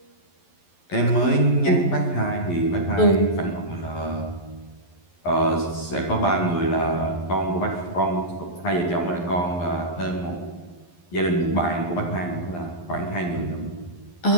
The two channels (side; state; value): right; late; 11 ms